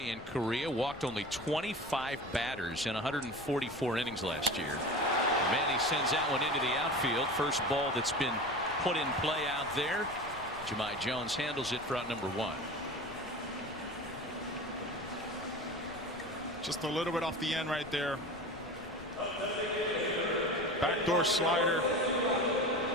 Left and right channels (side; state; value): left; noise; rumble, 18 dB below the sound